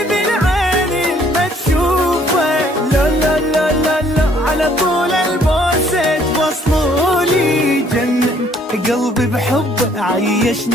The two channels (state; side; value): normal; both; correlation 0.62